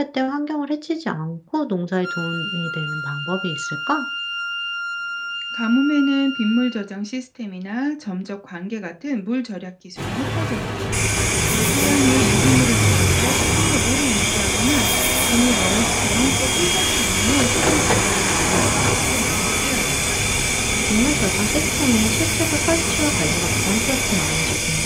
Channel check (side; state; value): both; identical; correlation 1.00